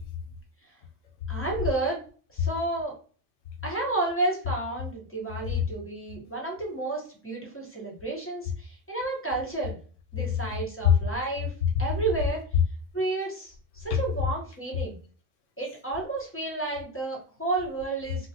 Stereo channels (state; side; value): normal; both; correlation 0.14